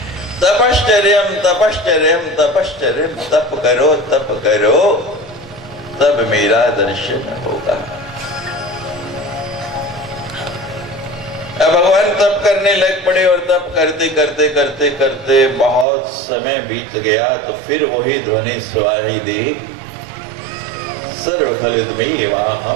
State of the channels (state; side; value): drops out; left; at 15.9 s